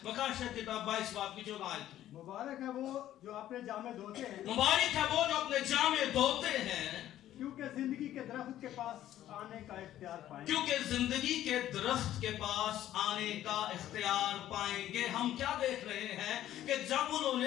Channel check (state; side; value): quieter; right; 12.7 dB